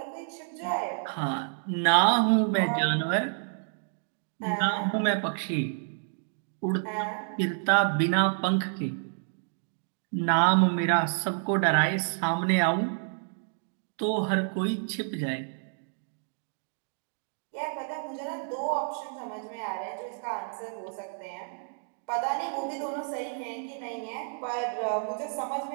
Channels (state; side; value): silent; left; digital silence